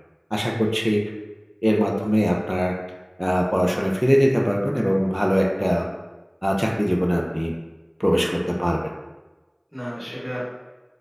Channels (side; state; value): both; identical; correlation 1.00